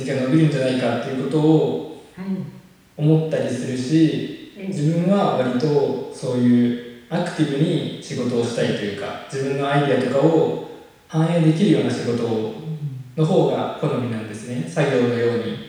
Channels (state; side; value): identical; both; correlation 1.00